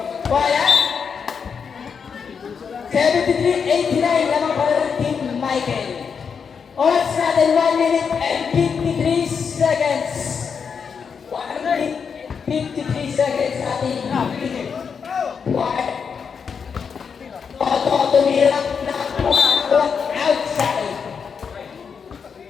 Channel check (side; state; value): right; quieter; 6.3 dB